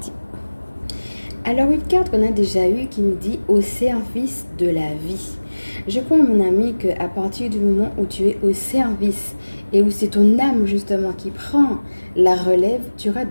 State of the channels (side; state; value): both; inverted; correlation -1.00